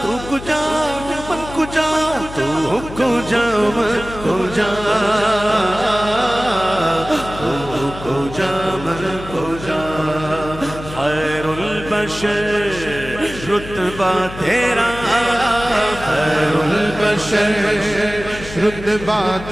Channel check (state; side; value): noise; left; hum, 13 dB below the sound